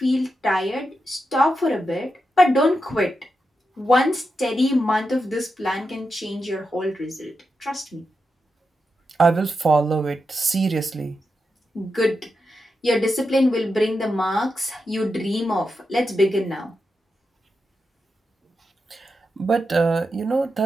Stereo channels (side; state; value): both; normal; correlation 0.88